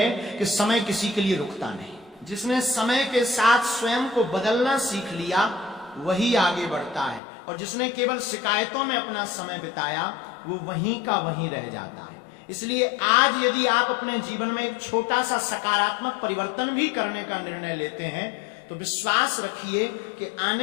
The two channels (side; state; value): right; drops out; at 7.2 s